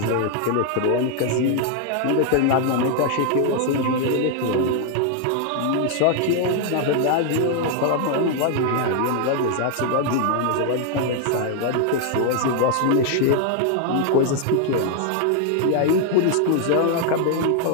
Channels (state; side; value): different; both; correlation 0.00